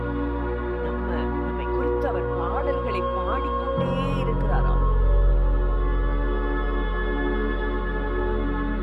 நம்மை குறித்து அவர் பாடல்களை பாடிக்கொண்டே இருக்கிறாராம்.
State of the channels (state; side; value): identical; both; correlation 1.00